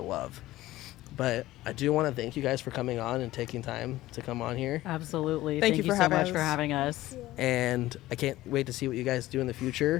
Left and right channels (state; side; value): quieter; right; 16.3 dB